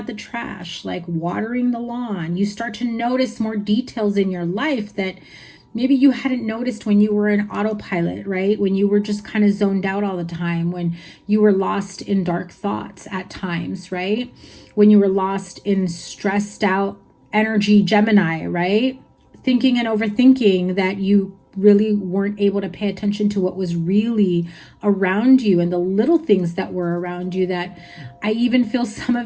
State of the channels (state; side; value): identical; both; correlation 1.00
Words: the trash, like watering the lawn. You start to notice more details in your life that maybe you hadn't noticed when you were in autopilot, right? When you were just kind of zoned out all the time, when you were lost in dark thoughts at times, right? When you were lost in stressed out energy, Gemini, right? Thinking and overthinking that you really weren't able to pay attention to what was really around you and the little things that were around you, that I even feel some